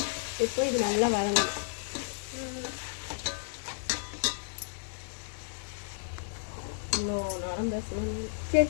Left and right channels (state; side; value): silent; right; 56 dB below the other